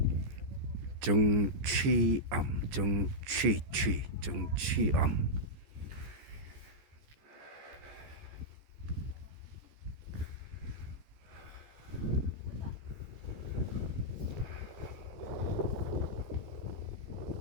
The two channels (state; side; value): late; left; 14 ms